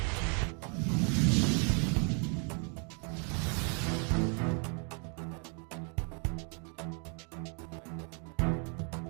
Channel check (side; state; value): left; quieter; 38.5 dB